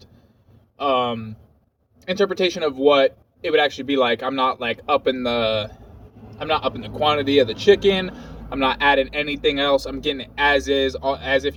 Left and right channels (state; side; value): identical; both; correlation 1.00